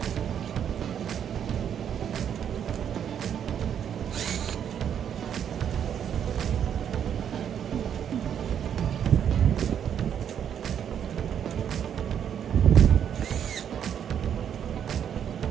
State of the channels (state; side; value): quieter; left; 8.8 dB